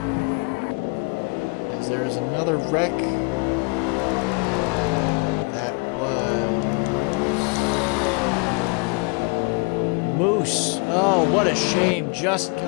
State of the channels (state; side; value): quieter; right; 33.0 dB